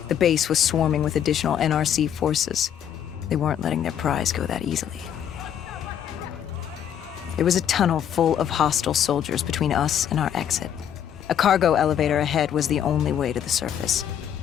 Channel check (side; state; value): right; quieter; 9.4 dB